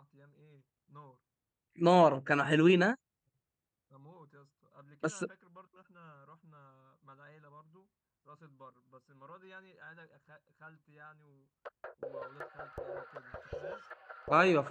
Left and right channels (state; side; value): identical; both; correlation 1.00